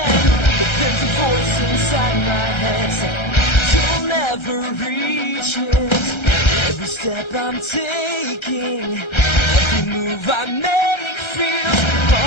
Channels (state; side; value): late; right; 1.3 ms